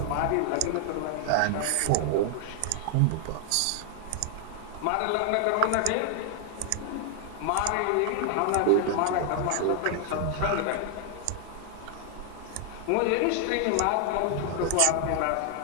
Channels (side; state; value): both; different; correlation 0.00